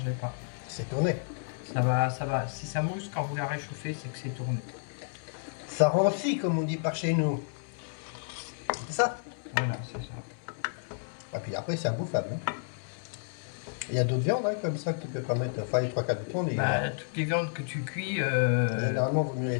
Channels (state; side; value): silent; right; 57 dB below the other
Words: pas. C'est tourné. Ça va. Si ça mousse quand vous la réchauffez, c'est que c'est tourné. Ça rancit comme on dit par chez nous. C'est ça? Voilà, c'est ça. Et puis après c'est imbouffable. Hein. Il y a d'autres viandes hein, comme ça que tu peux pas mettre. Enfin les 3/4 du temps. Toutes les viandes que tu cuis, Généralement vaut mieux les